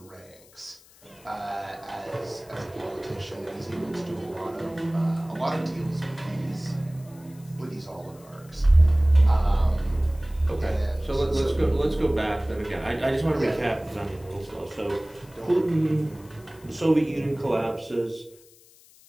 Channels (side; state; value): left; noise; hiss, 26 dB below the sound